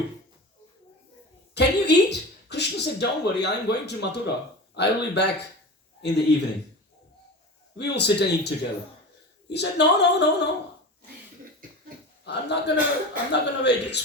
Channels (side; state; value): both; normal; correlation 0.30